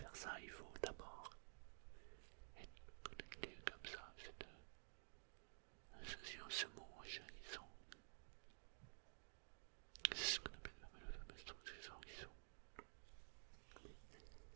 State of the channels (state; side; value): silent; left; digital silence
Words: ça, il faut d'abord être connecté comme ça, cette association, ce mot jaillissant. C'est ce qu'on appelle la fameuse transition qui sont.